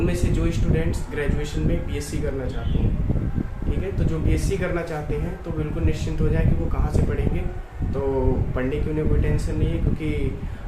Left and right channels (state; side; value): identical; both; correlation 1.00